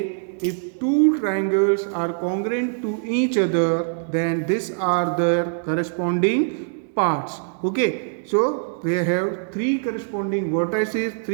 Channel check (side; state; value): left; silent; 63 dB below the other